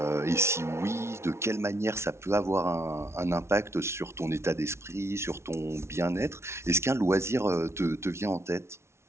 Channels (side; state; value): left; late; 0.13 ms